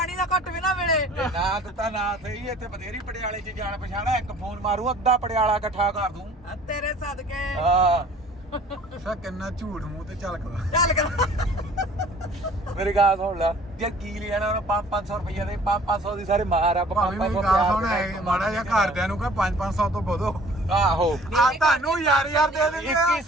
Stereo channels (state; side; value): normal; both; correlation 0.51